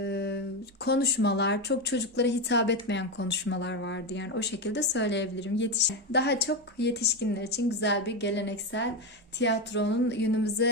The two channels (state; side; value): normal; both; correlation 0.13